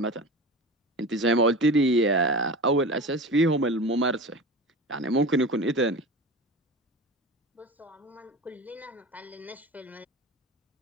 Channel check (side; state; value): both; normal; correlation 0.32